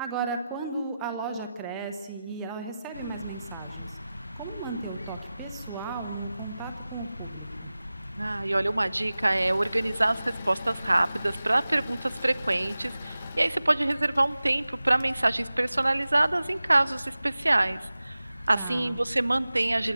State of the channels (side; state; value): both; inverted; correlation -0.95